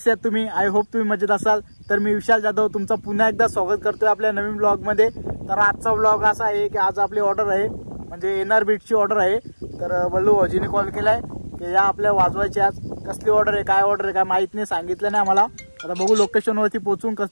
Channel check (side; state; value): both; inverted; correlation -1.00